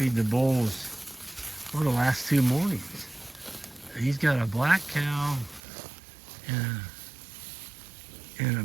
the bulls for the last 2 mornings. And he's got a black cow and a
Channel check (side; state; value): left; drops out; at 5.6 s